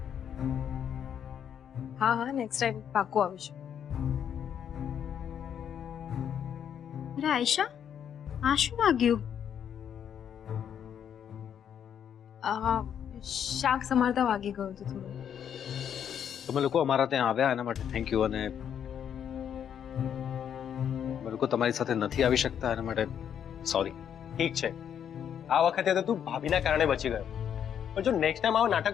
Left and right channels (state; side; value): quieter; right; 8.8 dB